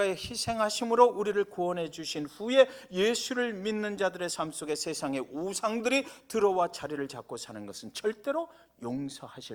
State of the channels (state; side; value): identical; both; correlation 1.00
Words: 희생하심으로 우리를 구원해 주신 후에 예수를 믿는 자들의 삶 속에 세상의 우상들이 들어와 자리를 잡고 사는 것은 절대로